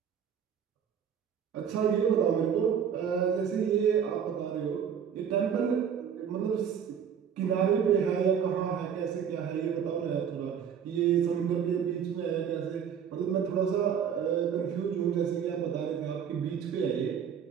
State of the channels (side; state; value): left; quieter; 7.9 dB